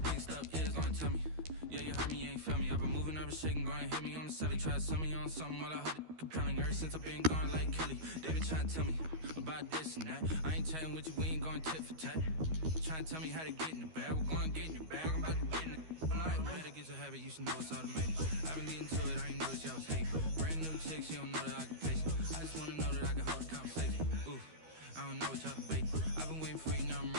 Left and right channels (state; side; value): late; left; 13 ms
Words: stuff is, gonna tell me. Yeah, you heard me, you ain't felt me. I've been moving, I've been shaking, go and hit me on the celly. Try to sell me on something while I hold it compelling. Ever since I've been gone like Kelly, they been trying to tell me about this and that. I ain't chatting with you, we ain't going tit for tat. Trying to tell me how to get in the bag. We're going to get in your bag, I'm about to get in it. I'm like, better get your habit, you should know it's automated. I've been getting to it, I ain't noticed y'all was hating. Brand new chick, she don't know the occupation. I just wanna know that I can hold a conversation. Ooh, I don't know what y'all debate. I've been waiting for you, now I'm